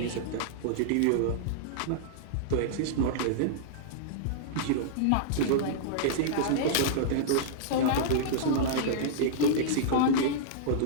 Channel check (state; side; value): different; both; correlation -0.02